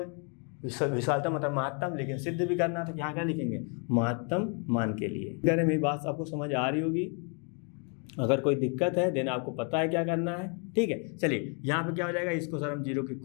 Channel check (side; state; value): right; quieter; 38.3 dB